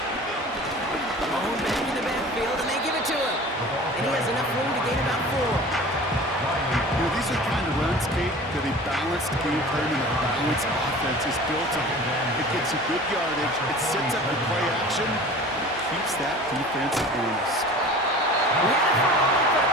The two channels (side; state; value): both; normal; correlation 0.41